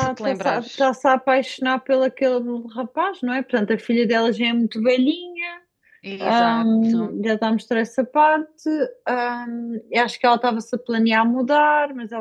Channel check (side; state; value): both; identical; correlation 1.00